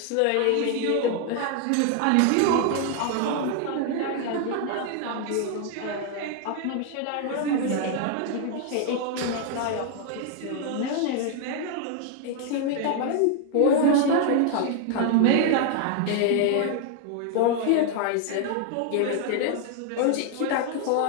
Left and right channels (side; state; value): both; different; correlation 0.00